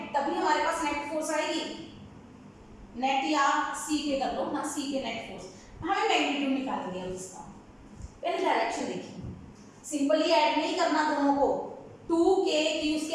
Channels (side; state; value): both; identical; correlation 1.00